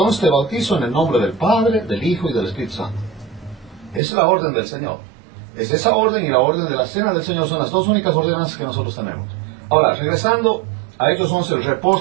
te bautizo en el nombre del Padre, del Hijo y del Espíritu Santo. Esa es la orden del Señor. Es esa orden y la orden de la cena del Señor son las dos únicas ordenanzas que nosotros tenemos. Ahora, regresando a Hechos 11, el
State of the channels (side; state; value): left; drops out; at 4.0 s